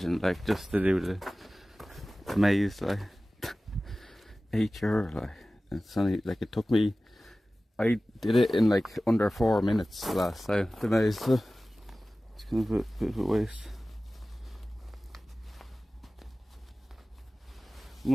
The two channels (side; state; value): both; normal; correlation 0.97